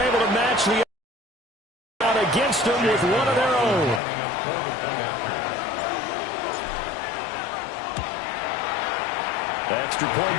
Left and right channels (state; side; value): drops out; right; at 4.0 s